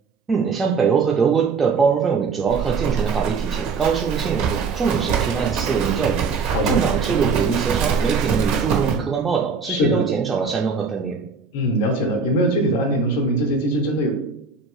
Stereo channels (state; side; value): quieter; left; 4.7 dB